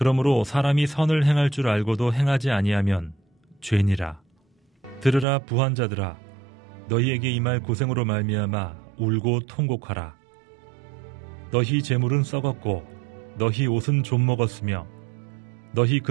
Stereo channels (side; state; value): left; drops out; at 5.2 s